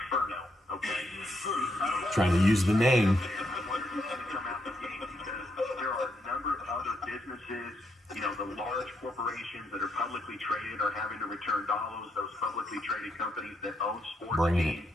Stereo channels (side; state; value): both; normal; correlation 0.77